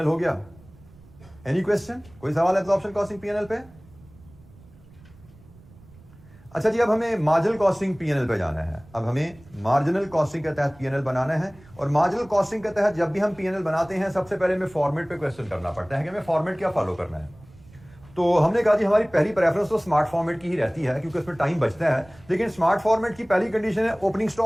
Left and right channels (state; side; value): noise; right; rumble, 24 dB below the sound